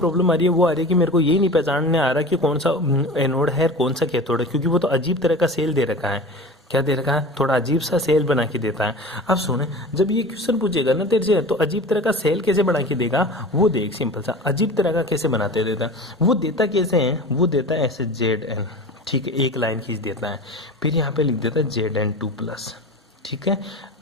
आ रही है वो आ रही है कि मेरे को ये नहीं पहचानने आ रहा कि कौन सा एनोड है कौन सा कैथोड है, क्योंकि वो तो अजीब तरह का सेल दे रखा है। क्या दे रखा है, थोड़ा अजीब सा सेल बना के देता है। अब सुने, जब ये क्वेश्चन पूछेगा ना तेरे से, तो अजीब तरह का सेल कैसे बना के देगा वो देख, सिंपल सा अजीब तरह का कैसे बनाते देता, वो देता कैसे है, वो देता है ऐसे ZN, ठीक है, एक लाइन खींच देता है, फिर यहाँ पे लिख देता है ZN2+, ठीक है,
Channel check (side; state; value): both; normal; correlation 0.35